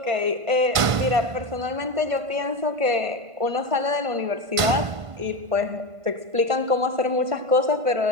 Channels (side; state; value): left; late; 1.5 ms